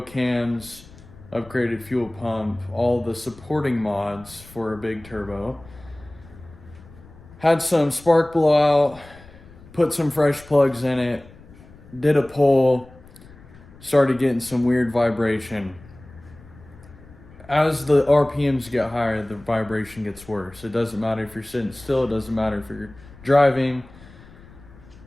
cams, upgraded fuel pump, all the supporting mods for a big turbo. Had some spark blowout, put some fresh plugs in it, did a pull, started getting some weird vibration. As the RPMs get higher, the vibration gets worse. It doesn't matter if you're sitting still, it doesn't matter if you're driving.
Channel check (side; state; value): left; noise; rumble, 22 dB below the sound